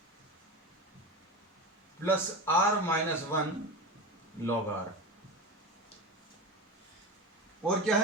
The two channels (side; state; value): both; normal; correlation 0.25